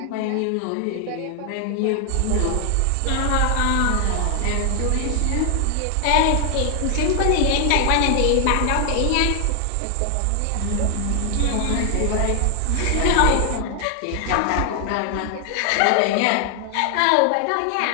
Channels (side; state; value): both; different; correlation 0.00